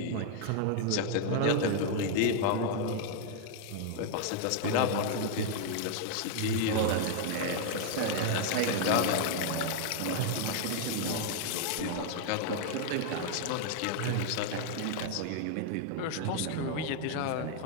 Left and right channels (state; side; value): different; both; correlation 0.00